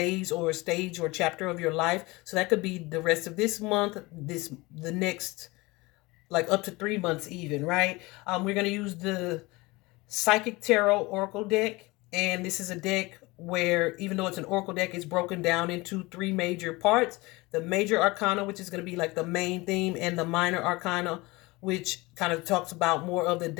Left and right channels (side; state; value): right; quieter; 22.8 dB